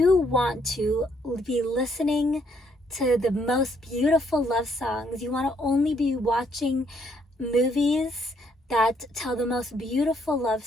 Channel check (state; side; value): normal; both; correlation 0.70